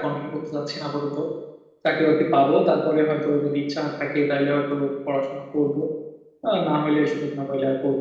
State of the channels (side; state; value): both; identical; correlation 1.00